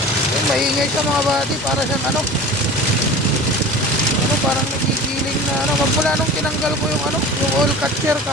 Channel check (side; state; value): both; normal; correlation 0.37